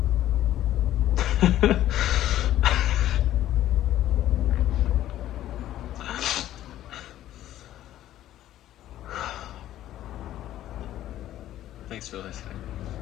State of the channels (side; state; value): right; quieter; 13.0 dB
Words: Thanks for listening.